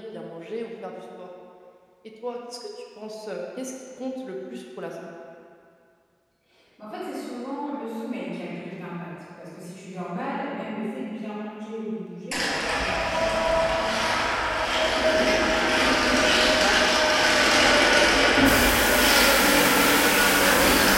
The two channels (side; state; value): both; identical; correlation 1.00